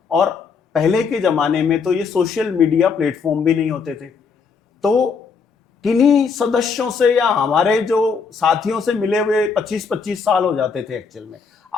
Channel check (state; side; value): quieter; right; 5.5 dB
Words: और पहले के जमाने में तो ये सोशल मीडिया प्लेटफॉर्म भी नहीं होते थे, तो किन्हीं सदस्यों से या हमारे जो साथियों से मिले हुए 25-25 साल हो जाते थे एक्चुअल में।